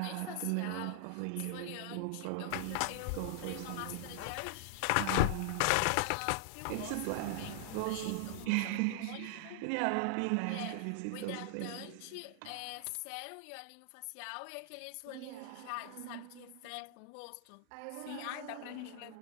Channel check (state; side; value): different; both; correlation 0.00